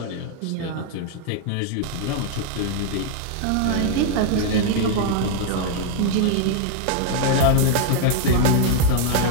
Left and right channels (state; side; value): different; both; correlation 0.00